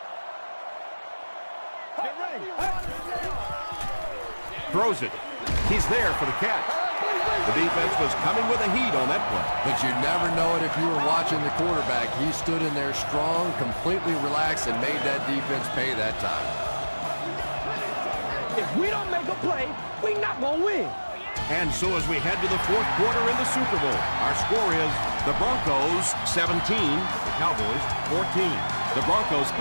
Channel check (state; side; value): inverted; both; correlation -1.00